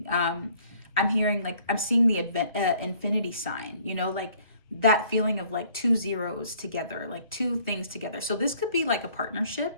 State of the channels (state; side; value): inverted; both; correlation -0.59